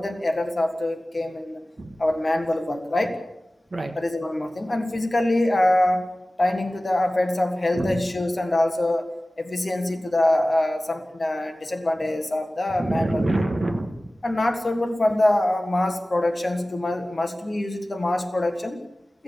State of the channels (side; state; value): both; normal; correlation 0.97